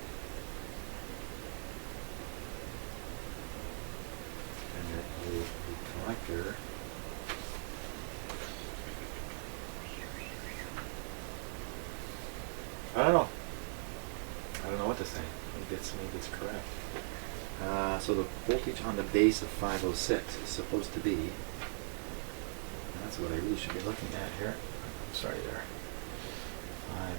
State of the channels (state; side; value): silent; left; digital silence